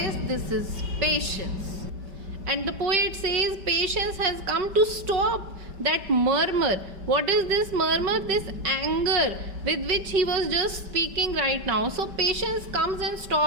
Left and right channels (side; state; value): left; late; 5.2 ms